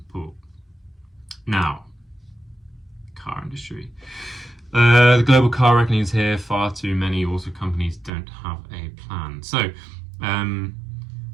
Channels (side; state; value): left; drops out; at 8.1 s